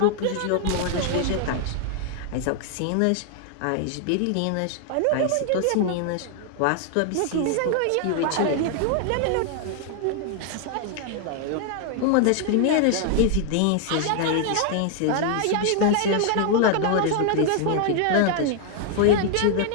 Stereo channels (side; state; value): both; different; correlation 0.00